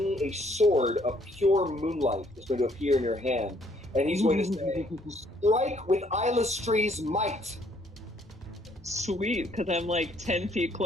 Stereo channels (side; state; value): both; normal; correlation 0.65